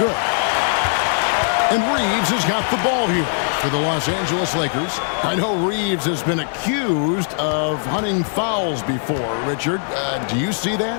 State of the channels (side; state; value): right; silent; digital silence